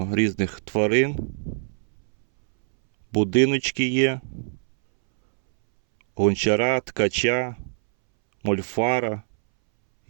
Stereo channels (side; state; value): left; silent; 63 dB below the other